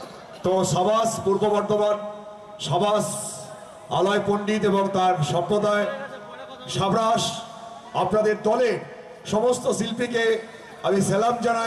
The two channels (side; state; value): both; identical; correlation 1.00